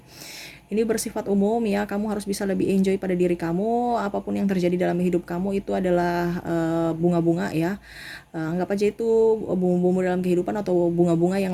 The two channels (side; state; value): both; identical; correlation 1.00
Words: Ini bersifat umum ya, kamu harus bisa lebih enjoy pada diri kamu. Apapun yang terjadi dalam hidup kamu itu adalah bunga-bunga ya. Anggap aja itu bumbu-bumbu dalam kehidupan, atau bunga-bunga